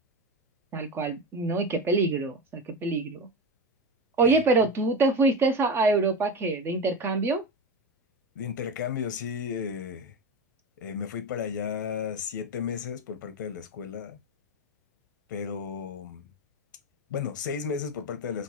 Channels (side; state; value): both; normal; correlation 0.20